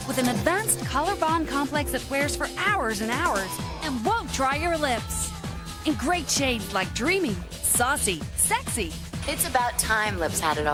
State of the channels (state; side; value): identical; both; correlation 1.00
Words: with an advanced color bond complex that wears for hours and hours and won't dry your lips. In great shades like dreamy, saucy, sexy. It's about time lips had it